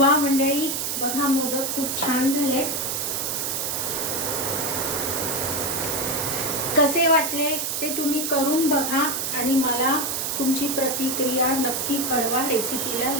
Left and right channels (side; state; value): right; noise; hiss, 1 dB below the sound